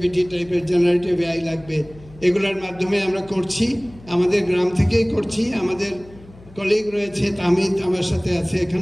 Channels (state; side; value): noise; left; hum, 22 dB below the sound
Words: টাইপের জেনারেটিভ এআই লাগবে। এগুলোর মাধ্যমে আমরা করছি, আমাদের গ্রাম থেকেই করছি। আমাদের কলিগ রয়েছে, তামিদ আমার সাথে আছে